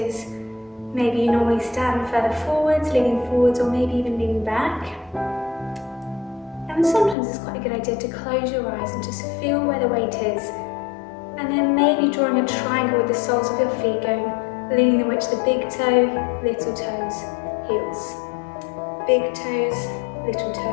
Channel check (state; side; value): drops out; right; at 7.2 s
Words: Maybe you normally stand further forwards, leaning forwards, or maybe even leaning back. And sometimes it's quite a good idea to close your eyes and just feel where the weight is. And then maybe drawing a triangle with the soles of your feet, going, leaning the weight to the big toe, little toes, heels. Big toes, little